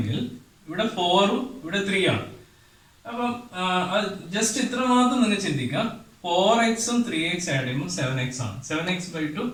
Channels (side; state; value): both; identical; correlation 1.00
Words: ഇവിടെ 4ഉം ഇവിടെ 3 ആണ്. അപ്പം ജസ്റ്റ് ഇത്ര മാത്രം നിങ്ങൾ ചിന്തിക്കാം. 4xും 3x ആഡ് ചെയ്യുമ്പോൾ 7x ആണ്. 7x/2